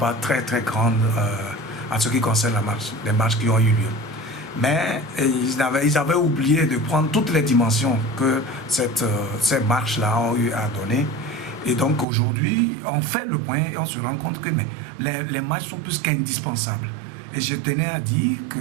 très grande en ce qui concerne les marches qui ont eu lieu. Mais ils avaient oublié de prendre toutes les dimensions que ces marches-là ont eu à donner. Et donc aujourd'hui, on fait le point et on se rend compte que les marches sont plus qu'indispensables. Et je tenais à dire que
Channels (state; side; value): drops out; left; at 12.1 s